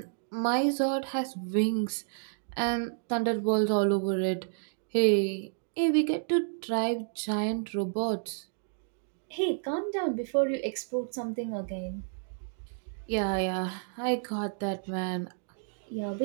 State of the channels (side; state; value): left; silent; digital silence